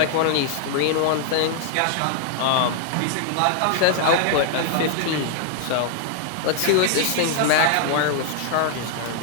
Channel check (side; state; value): both; different; correlation 0.00